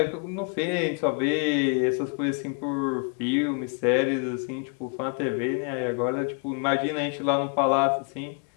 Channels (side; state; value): right; quieter; 39.3 dB